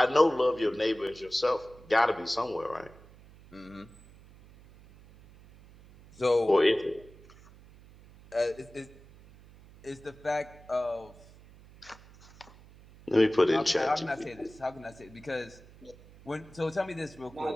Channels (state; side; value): noise; right; hum, 23 dB below the sound